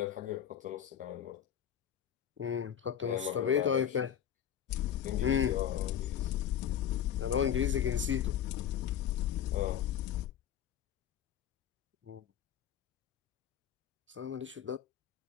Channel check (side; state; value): right; quieter; 9.6 dB